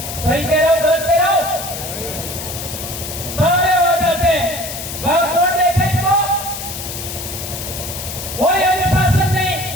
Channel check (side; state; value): left; noise; hiss, 7 dB below the sound